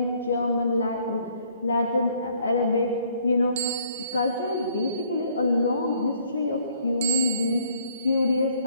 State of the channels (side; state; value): both; inverted; correlation -0.63